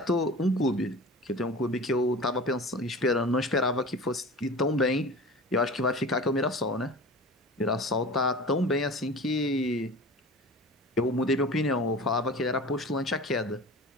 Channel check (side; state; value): both; normal; correlation 0.36